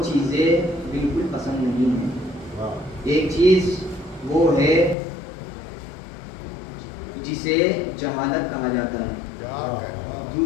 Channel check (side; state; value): right; drops out; at 5.0 s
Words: چیزیں بالکل پسند نہیں ہیں۔ ایک چیز وہ ہے جسے جہالت کہا جاتا ہے،